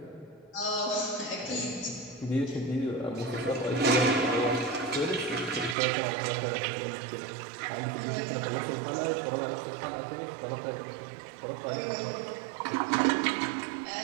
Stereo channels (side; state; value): left; drops out; at 5.8 s